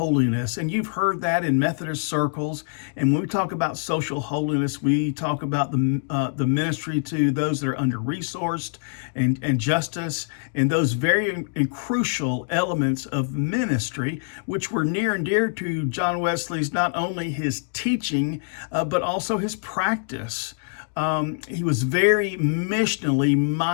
And you've heard that in Methodist circles. And when we talk about social holiness, we talk about the ministry to those that are under-resourced and justice, and those very and crucial elements of ministry, which were near and dear to John Wesley's, not only his teaching, but also his practice. He was very missionally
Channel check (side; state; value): right; silent; digital silence